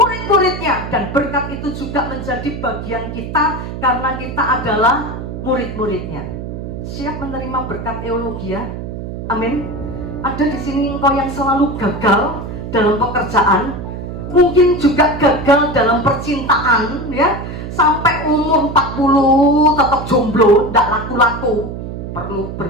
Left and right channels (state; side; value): noise; right; hum, 8 dB below the sound